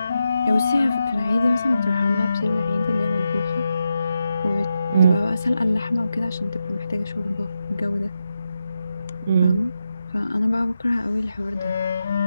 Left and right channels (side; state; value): both; inverted; correlation -0.86